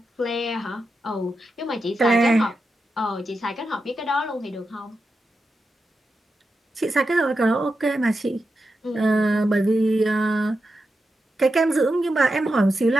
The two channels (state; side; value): normal; both; correlation 0.88